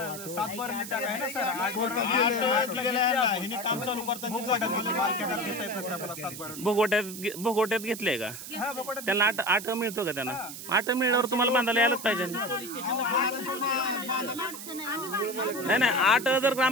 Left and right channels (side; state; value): right; noise; hiss, 11 dB below the sound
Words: बारांनी जागा आहे ना सर काम चालू भोगोट्यात घेतलंय का? त्यांना 8 मिळतो का त्यांना? 8 मिळल्यावर तुम्हाला बांधायला यायलाच पाहिजे. नाही 8 जर